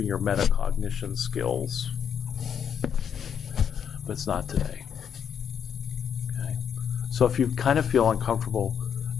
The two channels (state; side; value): quieter; right; 8.0 dB